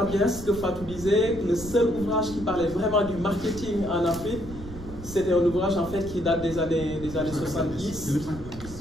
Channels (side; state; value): right; noise; rumble, 13 dB below the sound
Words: bien ce que Fatou disait, le seul ouvrage qui parlait vraiment du marketing en Afrique, c'était un ouvrage en fait qui date des années 70,